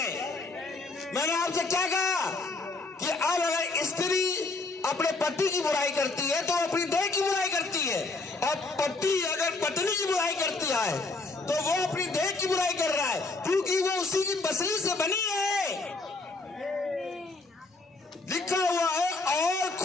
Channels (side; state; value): right; quieter; 3.4 dB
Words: मैंने आपसे क्या कहा कि अब अगर स्त्री अपने पति की बुराई करती है तो अपनी देह की बुराई करती है, और पति अगर पत्नी की बुराई करती है तो वो अपनी देह की बुराई कर रहा है, क्योंकि वो उसी की पसली से बनी है। लिखा हुआ है और